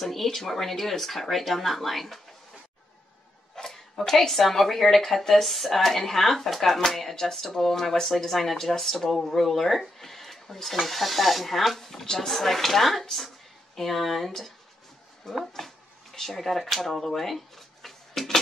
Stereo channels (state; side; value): normal; both; correlation 0.82